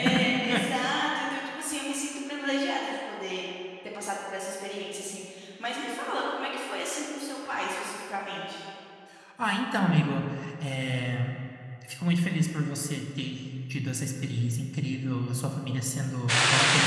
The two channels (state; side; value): identical; both; correlation 1.00